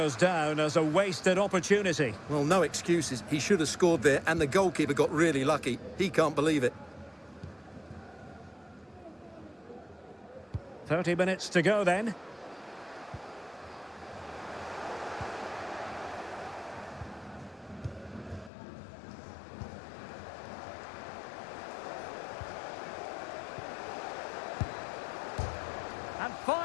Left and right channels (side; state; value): right; drops out; at 18.5 s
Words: down as a wasted opportunity. Well, no excuses. He should have scored there, and the goalkeeper got really lucky. He can't believe it. 30 minutes to go then. And